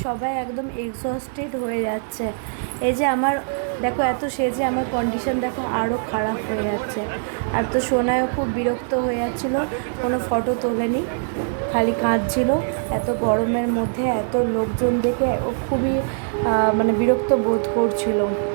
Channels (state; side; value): silent; left; digital silence